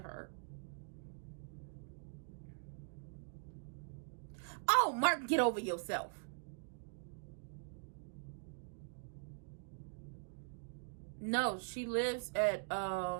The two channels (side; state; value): left; silent; digital silence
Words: Oh, Mark, get over yourself. No, she lives at